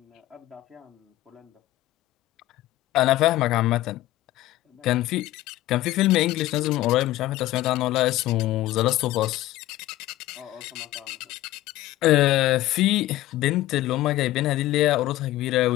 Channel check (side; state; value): right; quieter; 15.8 dB